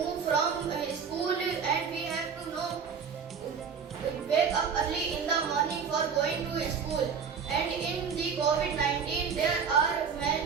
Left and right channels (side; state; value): left; quieter; 6.3 dB